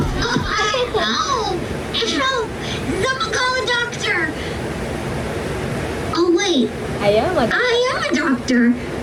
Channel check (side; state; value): both; identical; correlation 1.00